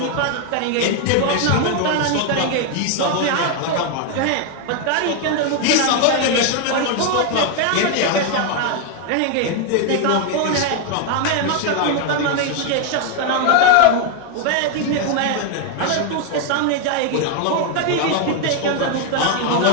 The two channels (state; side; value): different; both; correlation 0.00